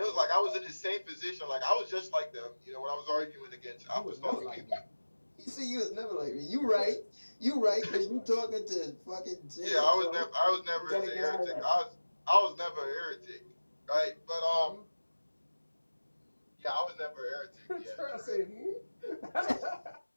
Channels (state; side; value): inverted; both; correlation -1.00